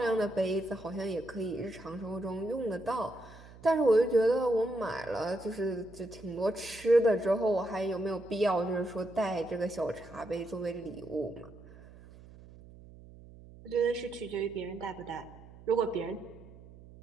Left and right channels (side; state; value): right; noise; hum, 20 dB below the sound